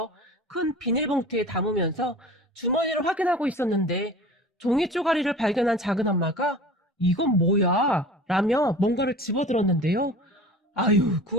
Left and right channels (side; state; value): both; normal; correlation 0.40